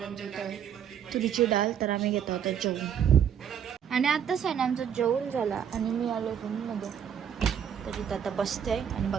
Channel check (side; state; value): left; quieter; 8.5 dB